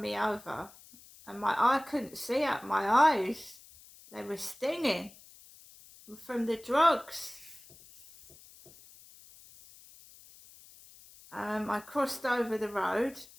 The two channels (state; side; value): noise; left; hiss, 22 dB below the sound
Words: over. And I couldn't see out my eyes. They were stinging from the drugs. I crossed over the road,